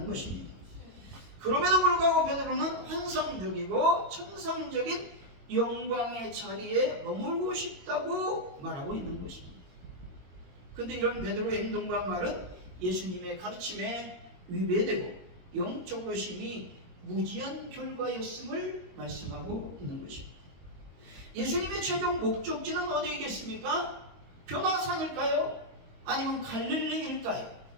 것입니다. 그럼에도 불구하고 베드로는 환상적이고 천상적인 영광의 자리에 머물고 싶다고 말하고 있는 것입니다. 그런데 이런 베드로의 행동과 말은 예수님의 가르침에 위배되고 영적으로 심히 무지한 결과였음을 말씀하고 있는 것입니다. 예수님의 최종 목적지는 어디이겠습니까? 변화산일까요? 아니면 갈릴리일까요?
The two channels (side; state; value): left; late; 22 ms